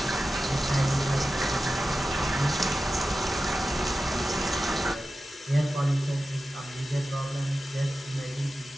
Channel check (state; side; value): normal; both; correlation 0.94